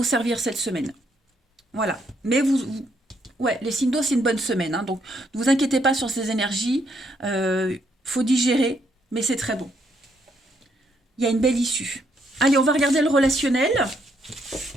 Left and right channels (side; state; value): both; normal; correlation 0.73